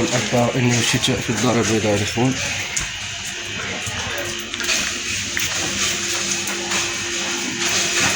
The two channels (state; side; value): identical; both; correlation 1.00